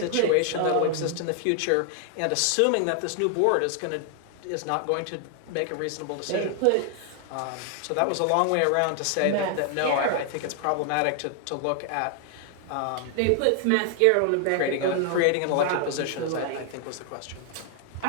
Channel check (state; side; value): different; both; correlation 0.00